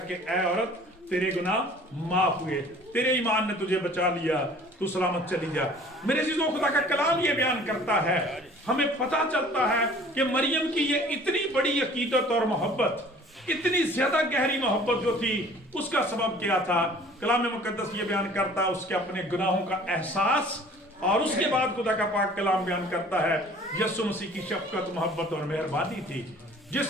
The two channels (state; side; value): normal; both; correlation 0.50